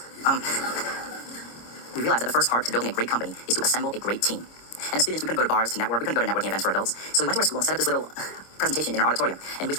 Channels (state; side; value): late; right; 26 ms